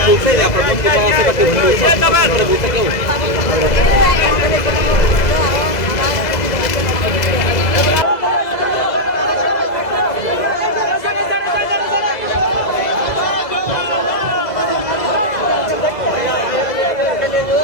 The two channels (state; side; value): late; right; 2.0 ms